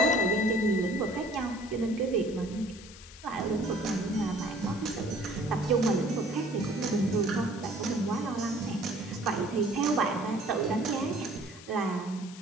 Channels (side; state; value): left; noise; hiss, 17 dB below the sound